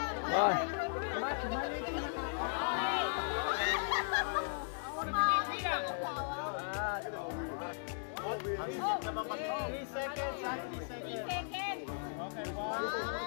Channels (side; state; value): right; silent; digital silence